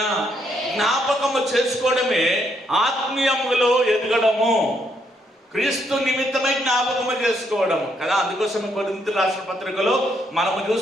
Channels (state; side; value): normal; both; correlation 0.74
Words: జ్ఞాపకము చేసుకోవడమే ఆత్మీయములో ఎదగడము, క్రీస్తు నిమిత్తమై జ్ఞాపకము చేసుకోవడం కదా. అందుకోసం కొరింథీ రాసిన పత్రికలో మనము